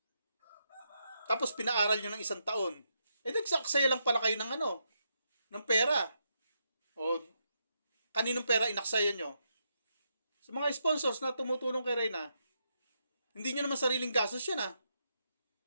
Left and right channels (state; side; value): inverted; both; correlation -0.81